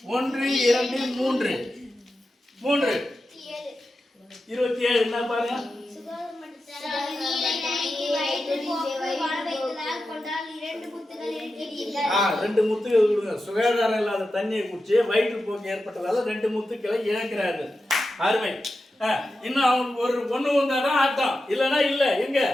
1 2 3 27 என்ன பாருங்க. நீரை நனைத்து வயிற்று போக்கு வாழ வைத்ததால் கொண்டால் 2 முத்துகள் இழக்கிறீர்கள். 2 முத்துக்கள் கொடுங்க. சுகாதாரம் இல்லாத தண்ணியை குடிச்சு வயிற்று போக்கு ஏற்பட்டதால 2 முத்துக்களை இழக்கிறார்கள். அருமை. இன்னும் அவங்க ஒரு ஒண்ணு வந்தாதான் ஆட்டம், இல்லைன்னா இல்ல. எங்க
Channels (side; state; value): both; normal; correlation 0.91